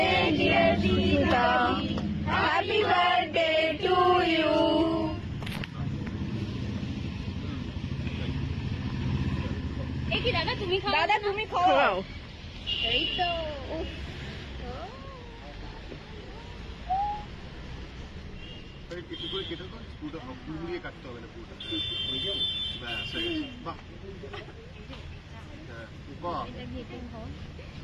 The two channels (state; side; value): identical; both; correlation 1.00